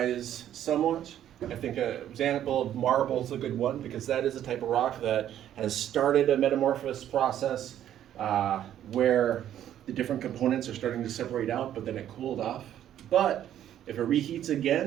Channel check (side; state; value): left; quieter; 11.1 dB